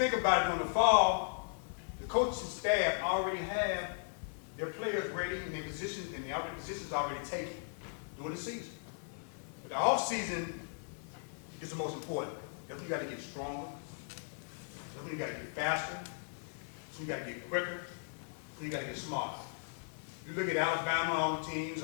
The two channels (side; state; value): right; silent; 53 dB below the other